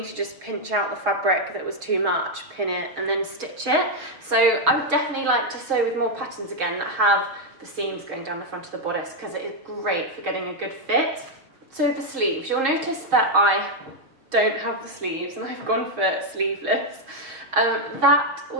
to just pinch out the fabric that was too much, pin it, and then stitch it. So I would definitely like to sew with more patterns again that have the seams going down the front of the bodice, because it is great for getting a good fit. So the sleeves, you'll notice that I don't have the sleeves and I've gone for sleeveless. That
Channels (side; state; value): left; late; 6.3 ms